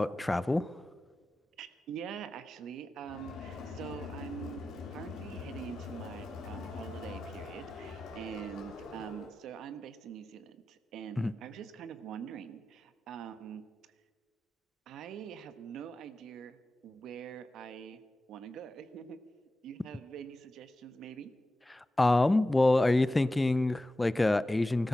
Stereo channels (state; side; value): normal; both; correlation 0.94